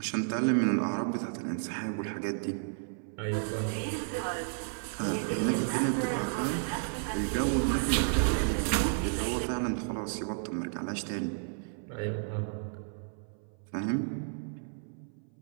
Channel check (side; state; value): left; silent; 56 dB below the other